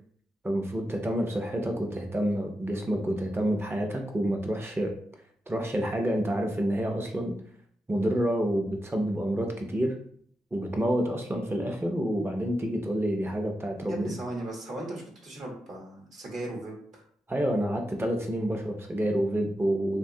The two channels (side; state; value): both; normal; correlation 0.89